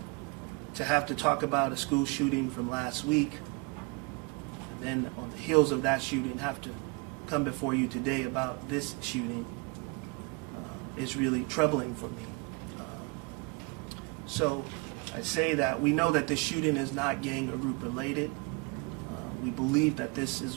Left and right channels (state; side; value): quieter; left; 29.9 dB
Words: To have to talk about a school shooting from last week, and then on the heels of that shooting have to come before you today about this shooting is really troubling for me. So I say that we know that this shooting is not gang or group related. We believe that this is